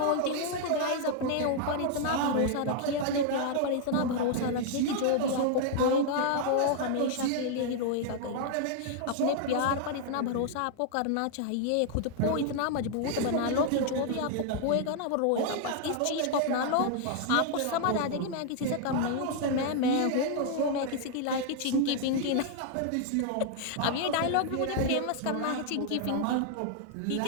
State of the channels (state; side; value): different; both; correlation 0.00